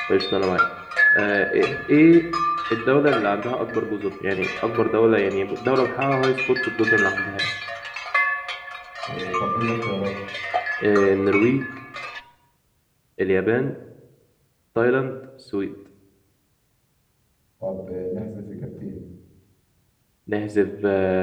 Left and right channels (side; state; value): both; identical; correlation 1.00